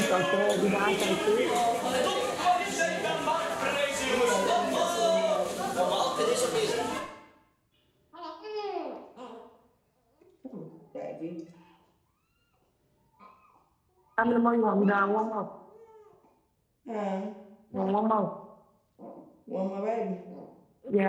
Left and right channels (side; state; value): both; identical; correlation 1.00